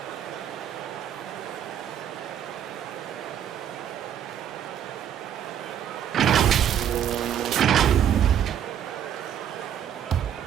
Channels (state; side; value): quieter; left; 9.6 dB